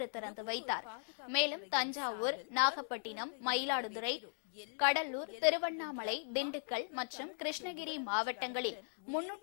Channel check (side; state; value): right; silent; digital silence